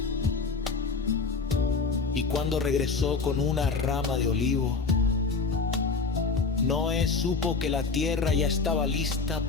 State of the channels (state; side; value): quieter; right; 4.5 dB